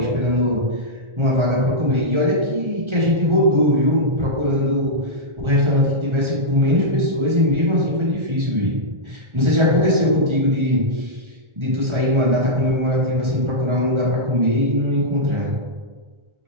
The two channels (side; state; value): left; late; 1.4 ms